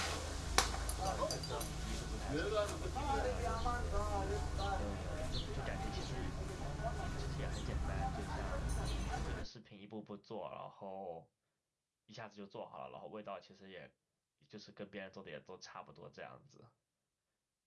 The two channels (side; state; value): both; identical; correlation 1.00